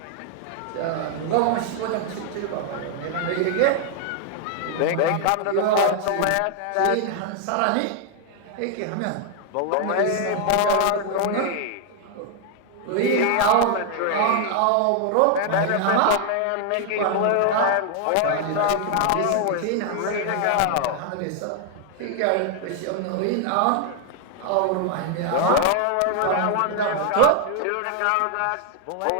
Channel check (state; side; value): different; both; correlation 0.00